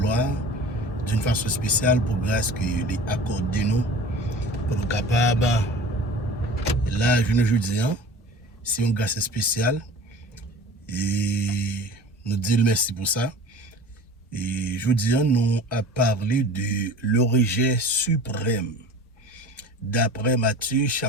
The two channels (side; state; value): both; normal; correlation 0.40